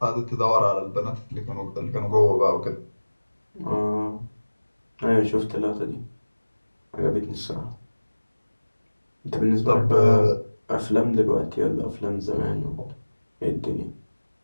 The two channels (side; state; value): both; inverted; correlation -1.00